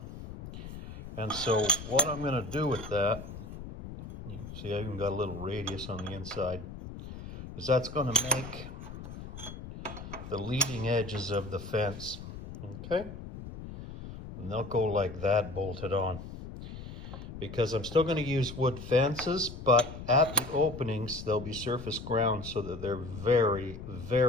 And so what I'm going to do with that, you can see I even got a little radius on the inside, is that's going to make the leading edges of the fence. Okay? And they'll go like that, bolted on. Because I'm still going to use wood fences, but at the openings they'll be surface ground so that they're very,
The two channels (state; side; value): noise; left; rumble, 11 dB below the sound